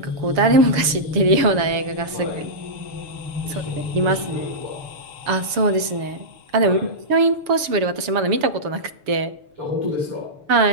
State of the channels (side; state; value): left; late; 6.8 ms